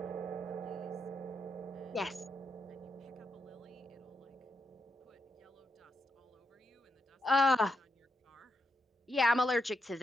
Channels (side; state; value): both; normal; correlation 0.82